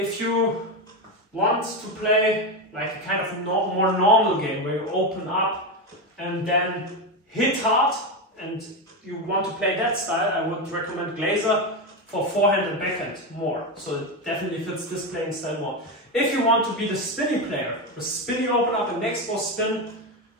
you want to play like a kind of more normal game where you open up and then hit hard, and you want to play that style, I would recommend Glayzer for forehand and backhand more. So it definitely fits this playing style more. If you want to be the spinny player, the spinny open up and next ball spin,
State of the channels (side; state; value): both; normal; correlation 0.13